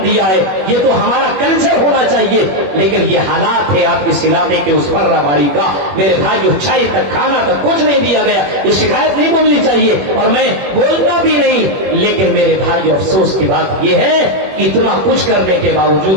دیا ہے. یہ تو ہمارا کلچر ہونا چاہیے، لیکن یہ حالات ہے آپ اس علاقے کے اس فرہ باری کا. میرے بھائیوں، چائے تک کھانا تک کچھ نہیں دیا گیا. یہ شکایت نہیں بولنی چاہیے اور میں بولتا بھی نہیں، لیکن میرے بھائیوں افسوس کی بات یہ ہے کہ اتنا کچھ کرنے کے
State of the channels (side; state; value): left; late; 21 ms